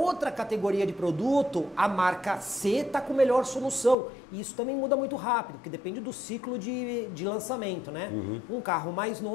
categoria de produto, a marca C está com melhor solução. E isso também muda muito rápido, porque depende do ciclo de lançamento, né? Um carro mais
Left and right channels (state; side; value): drops out; right; at 4.0 s